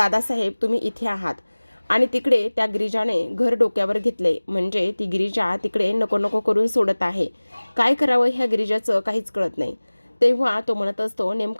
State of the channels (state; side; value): inverted; both; correlation -1.00